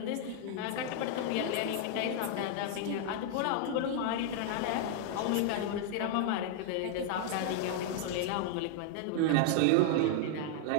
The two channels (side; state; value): both; different; correlation 0.00